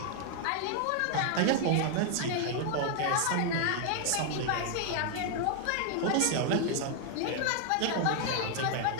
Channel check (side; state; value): both; different; correlation 0.00